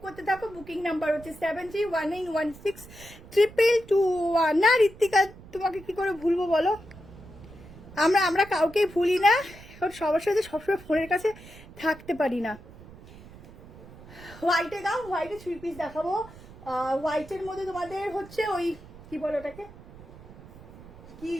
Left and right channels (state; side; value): noise; right; rumble, 19 dB below the sound